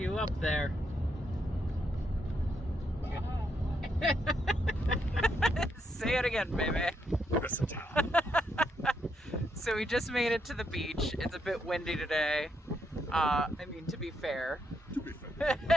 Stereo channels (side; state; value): both; normal; correlation 0.78